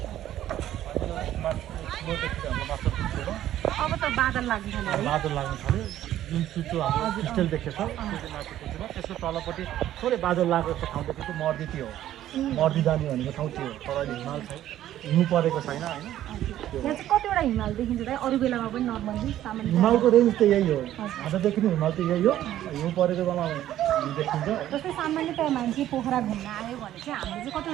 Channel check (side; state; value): left; quieter; 12.6 dB